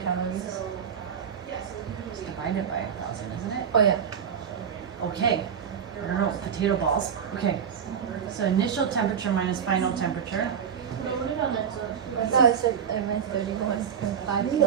It's divided by 1,000, isn't it? Oh yeah. Okay. I don't know. Potato balls. Okay. So initial temperature minus final temperature. I thought I meant 31.5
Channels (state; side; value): quieter; left; 7.7 dB